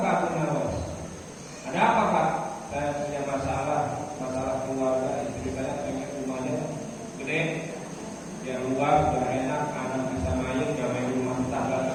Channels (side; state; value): both; identical; correlation 1.00